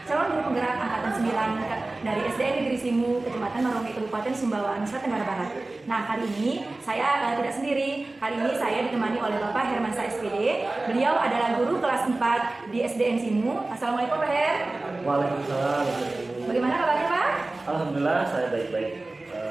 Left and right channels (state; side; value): quieter; left; 3.0 dB